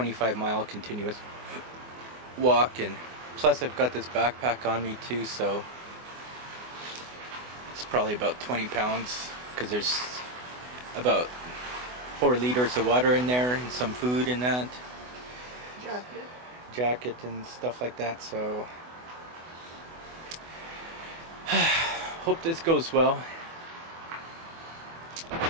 continuous walk, and plus I've got this backpack on me too, so it's probably about 20 pounds because there's about 4 liters of water in there and some food in that jacket and stuff like that. So hope this goes well.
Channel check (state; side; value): late; left; 24 ms